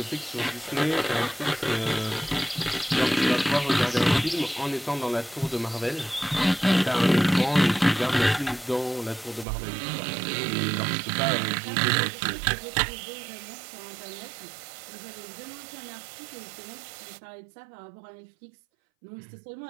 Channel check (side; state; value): left; drops out; at 9.5 s